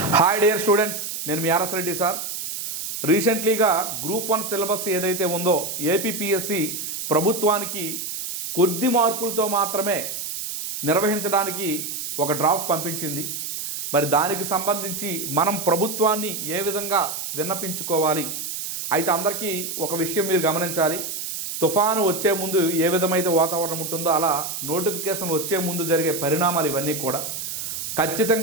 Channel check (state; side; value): noise; right; hiss, 5 dB below the sound